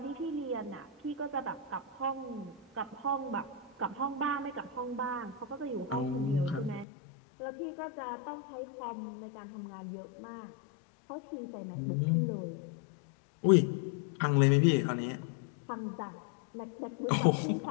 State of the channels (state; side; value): drops out; right; at 6.9 s